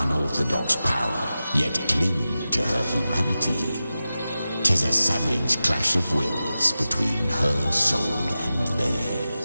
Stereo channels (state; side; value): inverted; both; correlation -0.94